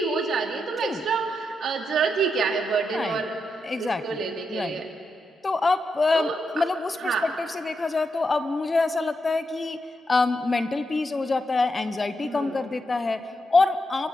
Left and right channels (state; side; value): normal; both; correlation 0.84